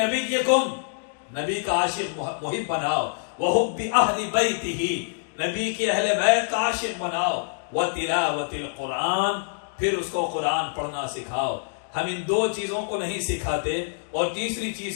نبیکم، نبی کا عاشق محب بناؤ، وحب اہل بیتہ، نبی کی اہل بیت کا عاشق بناؤ، وَتِلَاوَةِ الْقُرْآنِ، پھر اس کو قرآن پڑھنا سکھاؤ۔ ہم ان 2 چیزوں کو نہیں سکھاتے اور تیسری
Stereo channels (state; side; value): silent; right; digital silence